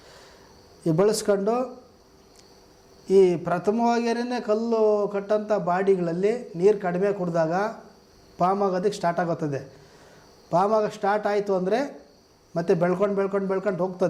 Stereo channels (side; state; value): both; identical; correlation 1.00